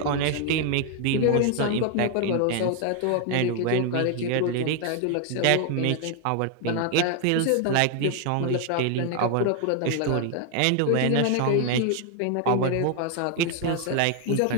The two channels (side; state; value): both; different; correlation 0.00